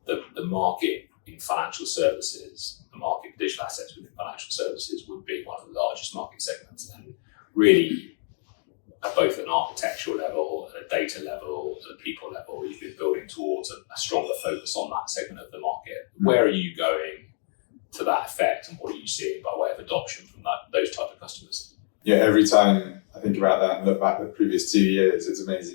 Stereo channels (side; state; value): right; silent; digital silence